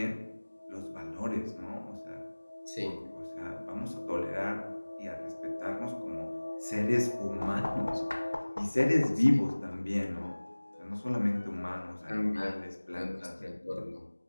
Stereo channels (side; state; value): both; inverted; correlation -1.00